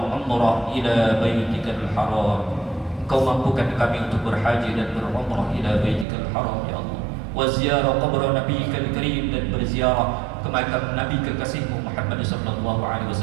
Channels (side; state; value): left; drops out; at 6.1 s